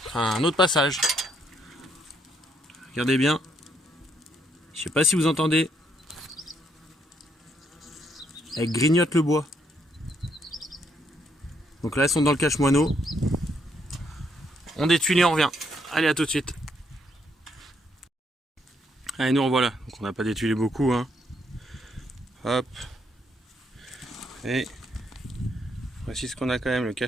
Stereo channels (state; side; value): normal; both; correlation 0.73